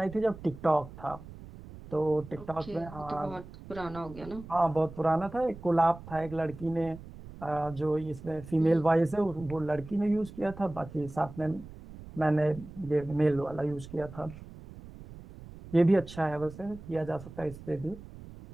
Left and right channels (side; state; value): right; noise; rumble, 16 dB below the sound